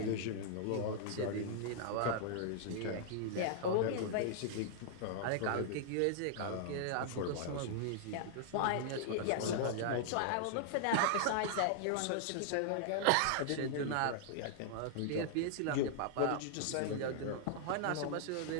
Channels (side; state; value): both; different; correlation -0.01